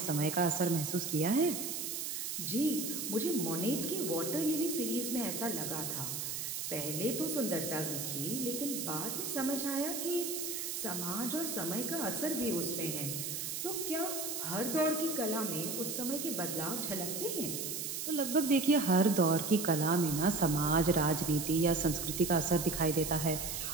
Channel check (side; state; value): right; noise; hiss, 4 dB below the sound